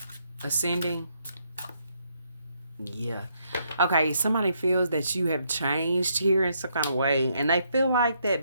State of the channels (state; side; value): inverted; both; correlation -0.74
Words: Ascending. Yeah. Okay, somebody feels that you have changed here in some kind of way. And they feel like that